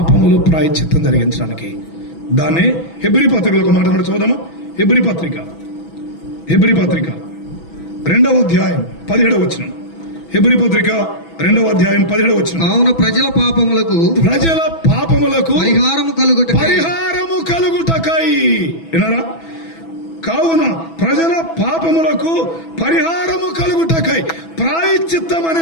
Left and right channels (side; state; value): right; late; 6.1 ms